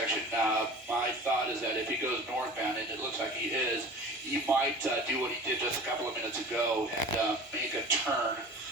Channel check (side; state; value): both; normal; correlation 0.39